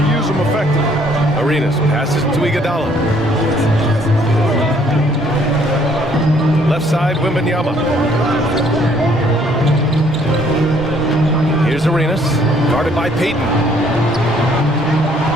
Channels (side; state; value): both; normal; correlation 0.63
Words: them effectively. Arenas passes to Iguodala. Left side, Wembanyama. Here's Arenas, guarded by Payton.